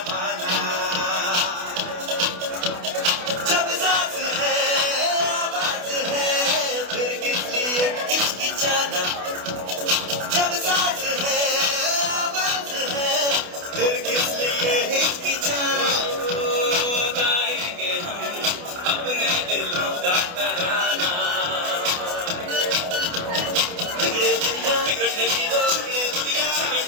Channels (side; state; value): left; late; 28 ms